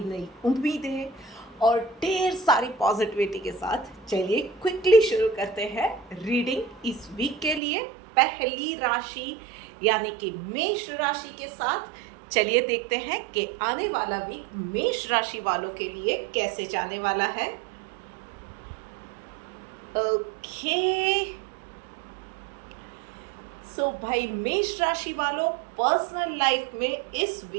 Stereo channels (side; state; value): left; drops out; at 7.6 s